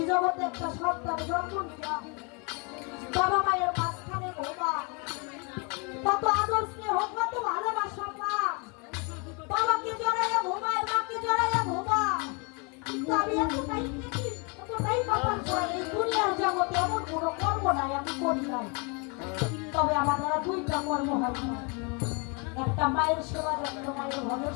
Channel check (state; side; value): quieter; right; 32.9 dB